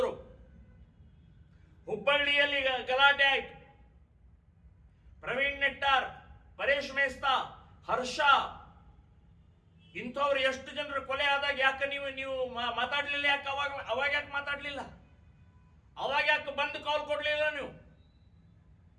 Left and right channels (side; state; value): both; identical; correlation 1.00